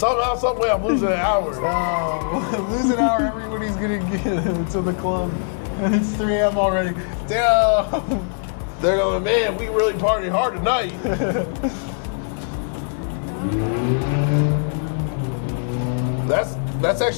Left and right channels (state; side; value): silent; right; digital silence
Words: some way, I'm losing an hour. Lose an hour, everybody's going to get to the club. And it's 3 a.m. already. Damn. They're going, man, we really partied hard tonight. That's